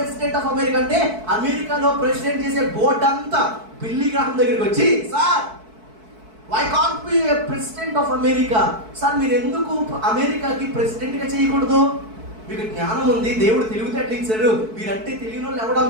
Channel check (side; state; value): left; late; 4.6 ms